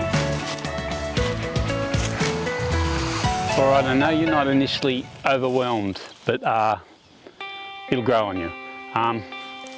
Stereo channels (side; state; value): both; identical; correlation 1.00